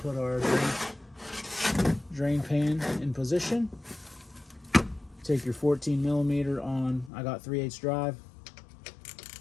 our drain pan in position. Take your 14 millimeter on, I got 3/8 drive.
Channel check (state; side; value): drops out; right; at 7.1 s